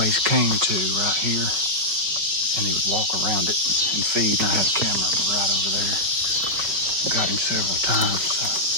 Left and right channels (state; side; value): late; left; 5.5 ms